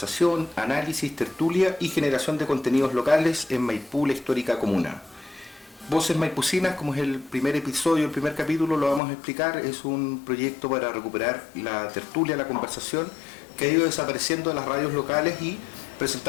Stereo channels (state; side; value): drops out; right; at 9.0 s